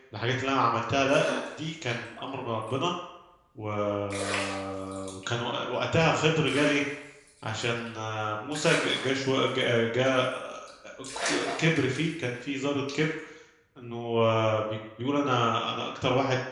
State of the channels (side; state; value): both; identical; correlation 1.00